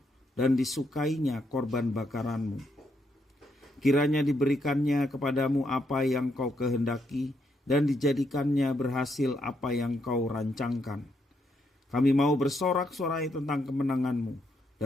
dan disukainya korban bakaranmu. Kiranya diberikannya kepadamu apa yang kau kehendaki dan dijadikannya berhasil apa yang kau rancangkan. Kami mau bersorak-sorai tentang kemenanganmu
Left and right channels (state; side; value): normal; both; correlation 0.77